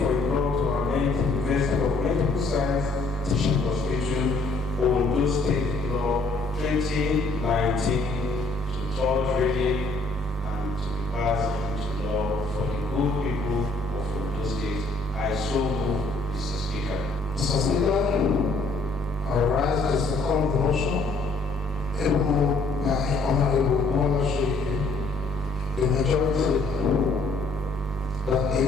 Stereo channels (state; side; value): quieter; right; 3.3 dB